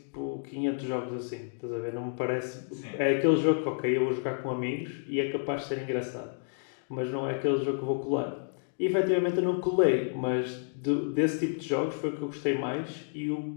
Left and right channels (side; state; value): right; silent; digital silence